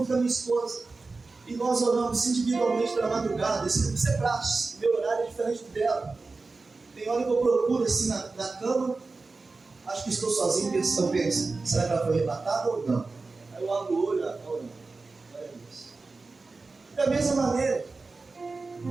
com a minha esposa. E nós oramos individualmente pela madrugada. Isso é prático. Meu horário é diferente do dela. Tem hora que eu procuro assim na cama. Acho que estou sozinho, eu penso, será que ela foi arrebatada ou não? Aí eu abro o olho, orando. Olha isso. Da mesma maneira,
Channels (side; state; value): left; quieter; 3.8 dB